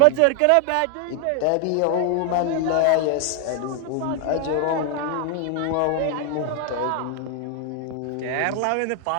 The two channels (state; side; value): different; both; correlation 0.00